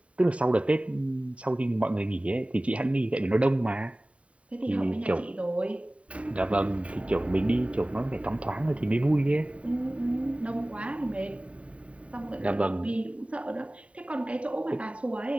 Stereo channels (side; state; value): left; late; 0.064 ms